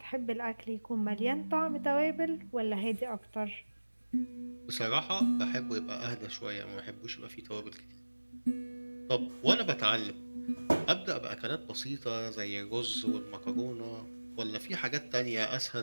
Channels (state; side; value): inverted; both; correlation -1.00